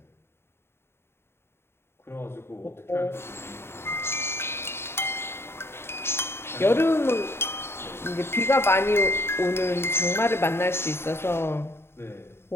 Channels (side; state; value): right; late; 0.12 ms